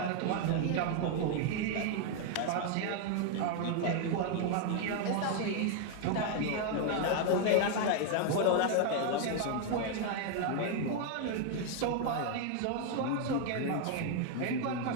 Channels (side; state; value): both; different; correlation 0.00